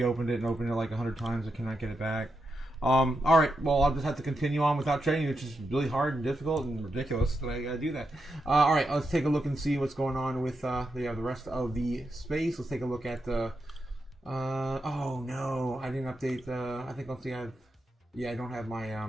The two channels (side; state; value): both; normal; correlation 0.85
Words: it and opened it like 100 times. I cannot get it back. All right. Well, I'll just have to continue on without trading, which is really hard and difficult and ridiculous that I got to do that. All right. Let's take a look and see what's going on with the rest of the space. Let's take a look at the... oh, no. I didn't update I think I'll see. I don't have